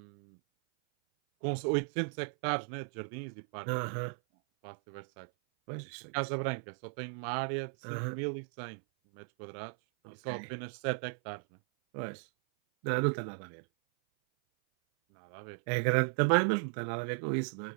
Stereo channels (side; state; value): left; silent; 54 dB below the other